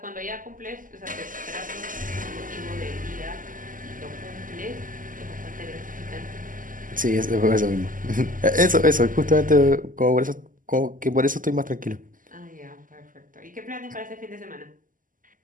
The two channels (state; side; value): late; left; 0.39 ms